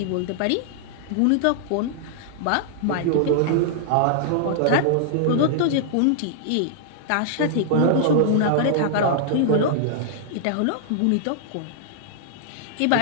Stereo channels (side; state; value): both; different; correlation -0.01